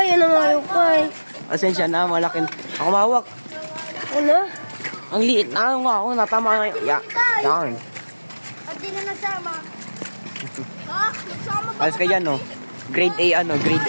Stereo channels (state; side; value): inverted; both; correlation -1.00